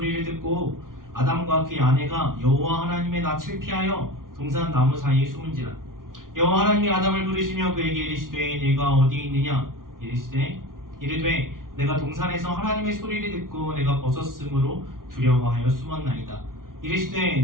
듣고 아담과 그의 아내가 여호와 하나님의 낯을 피하여 동산 나무 사이에 숨은지라. 여호와 하나님이 아담을 부르시며 그에게 이르시되 네가 어디 있느냐 이르되 내가 동산에서 하나님의 소리를 듣고 내가 벗었으므로 두려워하여 숨었나이다.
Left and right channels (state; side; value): late; left; 0.90 ms